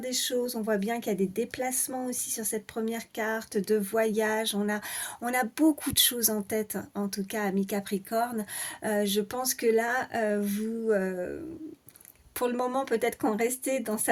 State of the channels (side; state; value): both; identical; correlation 1.00